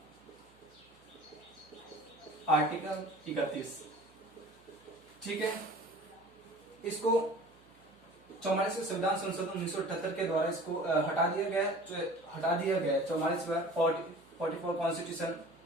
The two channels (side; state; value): right; noise; hum, 29 dB below the sound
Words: आर्टिकल 31। ठीक है, इसको 44वें संविधान संशोधन 1978 के द्वारा इसको हटा दिया गया। 44 कॉन्स्टिट्यूशन